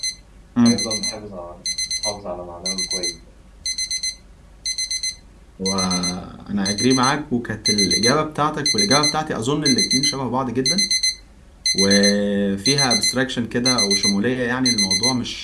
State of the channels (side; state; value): both; identical; correlation 1.00